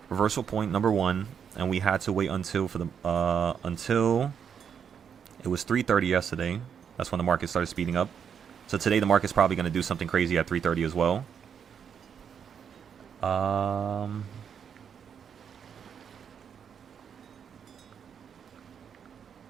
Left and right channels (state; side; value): quieter; left; 7.5 dB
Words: reversal point number 1, and we had to wait until it was 3:30 yesterday. That's when the market started speeding up. So today the market's probably going to do something crazy at 3:30 as well.